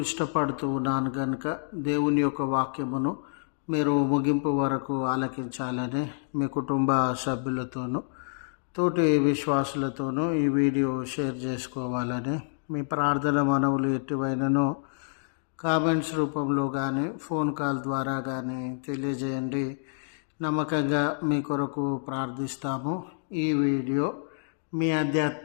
ఇష్టపడుతూ ఉన్నాను. కనుక దేవుని యొక్క వాక్యమును మీరు ముగింపు వరకు ఆలకించాలని మీ కుటుంబ సభ్యులతోనూ తోటి విశ్వాసులతోనూ ఈ వీడియో షేర్ చేసుకోవాలని, మీ ప్రార్థన మనవులు ఎటువైనను కామెంట్స్ రూపంలో కానీ ఫోన్ కాల్ ద్వారా కానీ తెలియజేయండి. నమ్మకంగా మీ కొరకు ప్రార్థిస్తాము. ఈ వీడియో మీ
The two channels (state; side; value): silent; right; digital silence